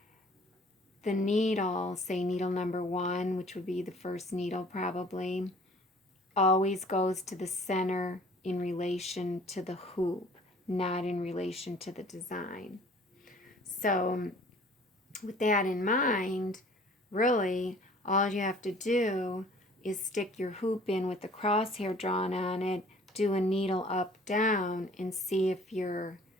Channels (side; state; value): both; normal; correlation 0.52